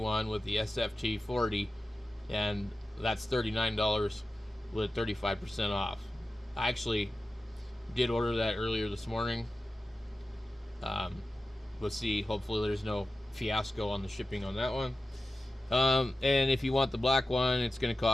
with the SFT 40, and that's $39 with 35% off. I actually did order that earlier this morning. Let's see, hopefully there's no fiasco on the shipping on that one. And if you want the black one, it's going to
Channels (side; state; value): both; normal; correlation 0.94